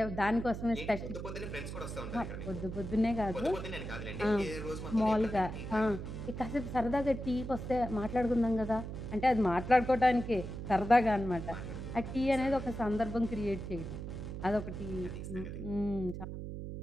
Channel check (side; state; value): right; noise; hum, 7 dB below the sound